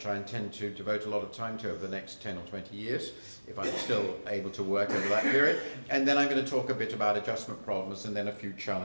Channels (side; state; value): both; inverted; correlation -1.00